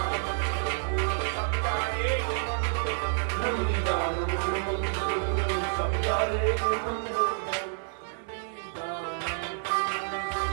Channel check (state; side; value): silent; left; 59 dB below the other